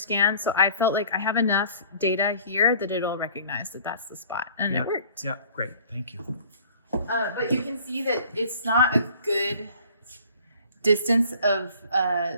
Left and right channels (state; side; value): inverted; both; correlation -0.51